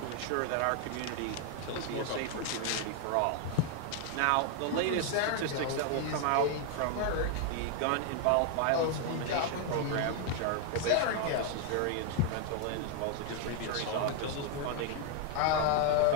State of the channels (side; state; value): both; different; correlation 0.00